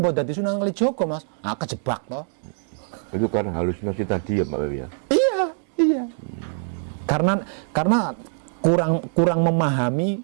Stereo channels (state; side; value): silent; left; digital silence